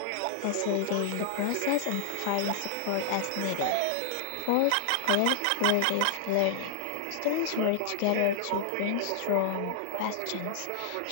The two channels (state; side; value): different; both; correlation 0.00